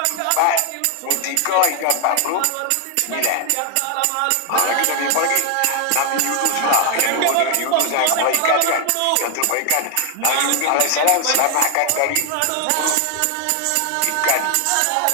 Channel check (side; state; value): both; different; correlation 0.00